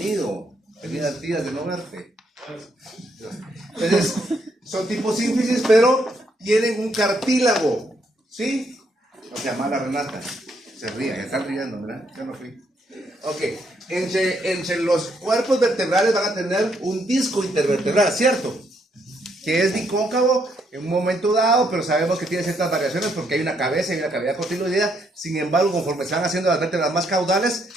Bienvenida, tías, de no verte. Entonces, son tipo sínfisis, pero tienen un cartílago. ¿Sí? O sea, mala Renata. Se ríe, ya están riendo, ¿verdad? Yo no fui. Ok, entre los cuerpos vertebrales van a tener un disco intervertebral, ¿cierto? Que es bicóncavo en un momento dado, pero sabemos que tiene ciertas variaciones porque hay una cabeza y una cavidad cotiloidea. Sin embargo, conforme se van haciendo las vértebras más caudales,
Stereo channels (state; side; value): normal; both; correlation 0.74